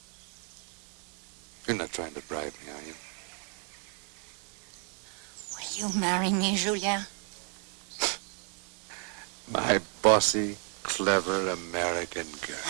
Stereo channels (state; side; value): quieter; left; 39.7 dB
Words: You're not trying to bribe me, are you? Will you marry me, Julien? My bossy, clever American girl.